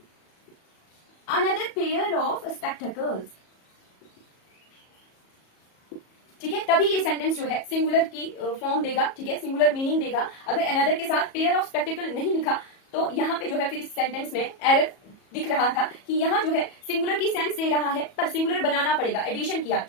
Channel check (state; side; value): late; right; 37 ms